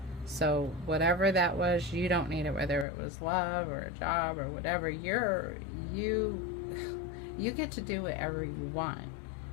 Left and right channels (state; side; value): drops out; right; at 2.9 s